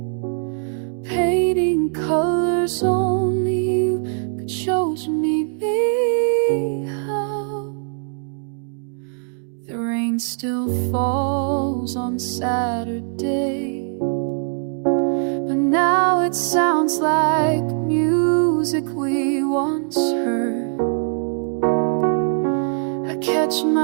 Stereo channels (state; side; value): silent; left; 62 dB below the other